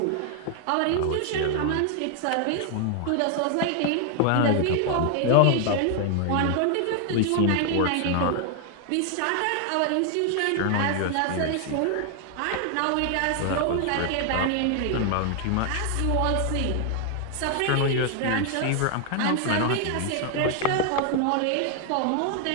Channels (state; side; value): different; both; correlation 0.00